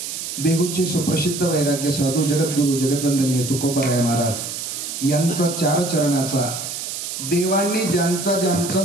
देहूचे सुप्रसिद्ध वैराग्य साधू जगद्गुरु जगद्वंदनीय तुकोबाराय महाराज यांचा 4 चरणाचा देवांनी ज्यांचा ज्यांचा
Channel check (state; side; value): noise; right; hiss, 6 dB below the sound